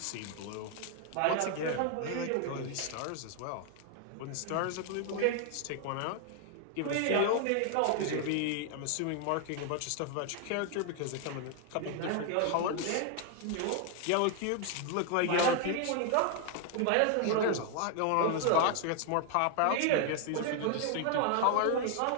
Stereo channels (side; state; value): both; different; correlation 0.00